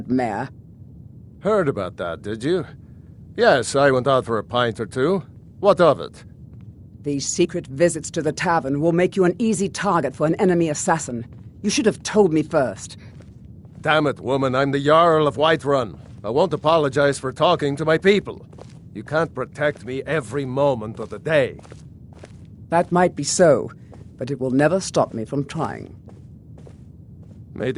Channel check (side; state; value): both; identical; correlation 1.00